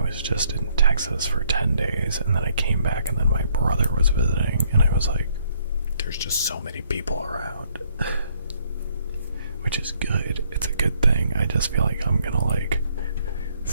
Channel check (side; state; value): both; inverted; correlation -0.68